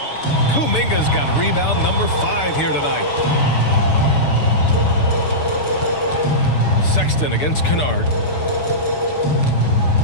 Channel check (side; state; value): right; late; 6.8 ms